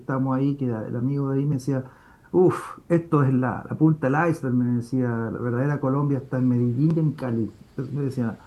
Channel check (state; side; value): identical; both; correlation 1.00